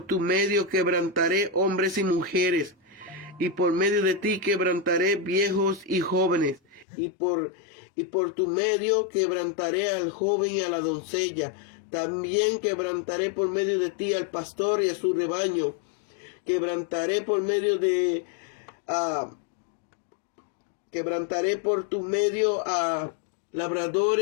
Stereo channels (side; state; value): right; drops out; at 6.9 s